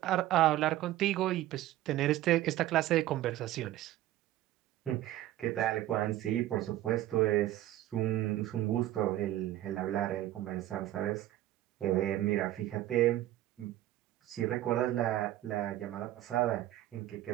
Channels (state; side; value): quieter; left; 14.3 dB